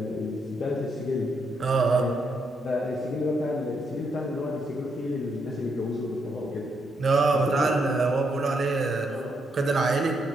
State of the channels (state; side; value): normal; both; correlation 0.78